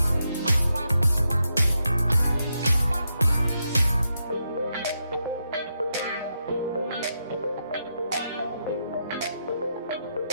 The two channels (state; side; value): inverted; both; correlation -0.83